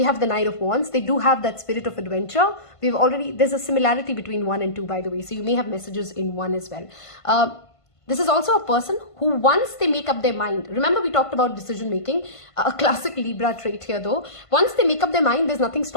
have the Knight of Wands. They do have that spirit of adventure. There's a similarity between 1 and 2, by the way, so you may have messages in 1 as well. This is also a person who, once they make up their mind, remember we talked about decision making, a classic Libra trait here though. Once they make up their mind, there's nothing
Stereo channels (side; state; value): right; late; 1.5 ms